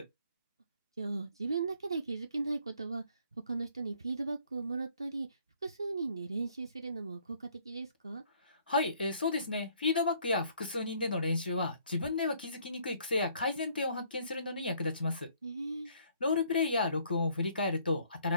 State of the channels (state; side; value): inverted; both; correlation -0.63